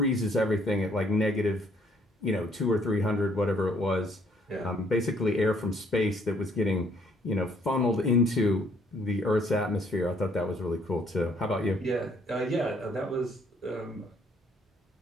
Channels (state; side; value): normal; both; correlation 0.64